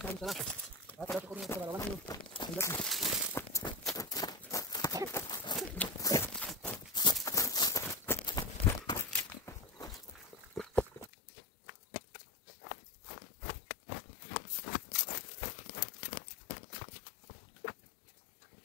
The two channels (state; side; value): drops out; right; at 11.1 s